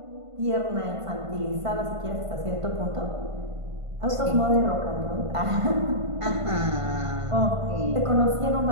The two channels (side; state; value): left; late; 1.5 ms